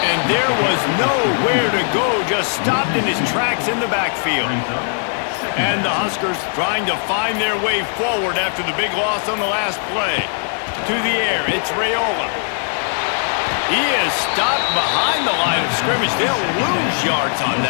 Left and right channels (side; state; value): right; silent; 57 dB below the other